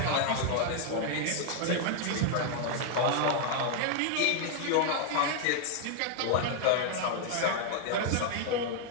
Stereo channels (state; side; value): different; both; correlation 0.00